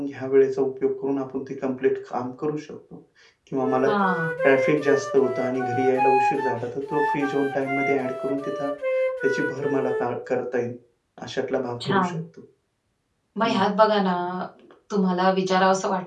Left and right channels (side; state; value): both; identical; correlation 1.00